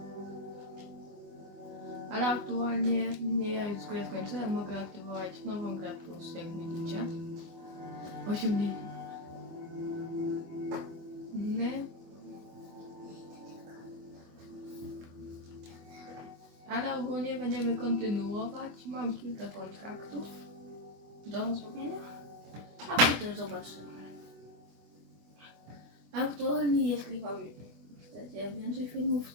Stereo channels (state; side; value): late; left; 25 ms